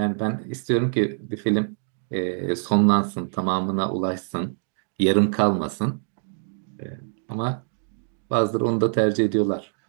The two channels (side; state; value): left; silent; digital silence